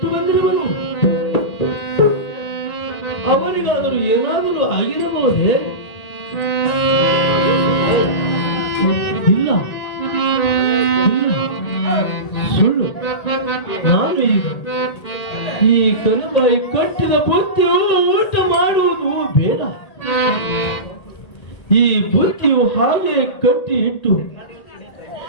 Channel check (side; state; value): right; late; 1.8 ms